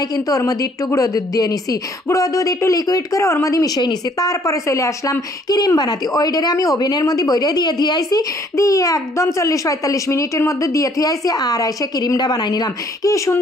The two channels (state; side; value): normal; both; correlation 0.62